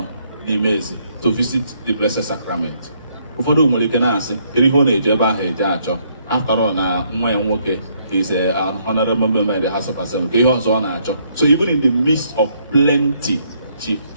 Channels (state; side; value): inverted; both; correlation -0.70